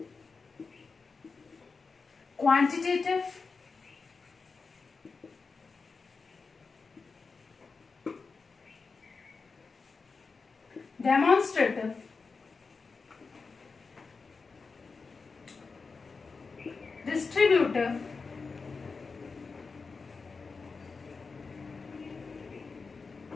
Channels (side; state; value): right; quieter; 4.6 dB